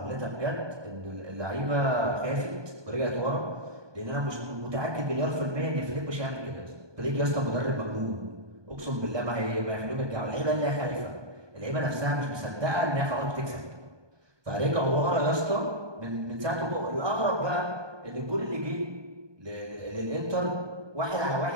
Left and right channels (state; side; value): late; left; 1.2 ms